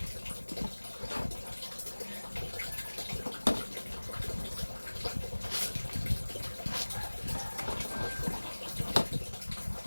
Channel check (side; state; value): both; inverted; correlation -1.00